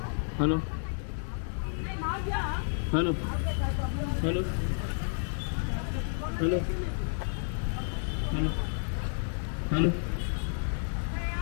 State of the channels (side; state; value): right; silent; digital silence